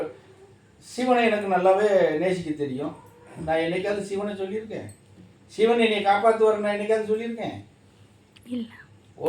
சிவனை எனக்கு நல்லாவே நேசிக்க தெரியும். நான் என்னைக்காவது சிவனை சொல்லியிருக்கேன்? சிவன் என்னை காப்பாற்றுவார் நான் என்னைக்காவது சொல்லியிருக்கேன்? இல்லை,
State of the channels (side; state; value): both; identical; correlation 1.00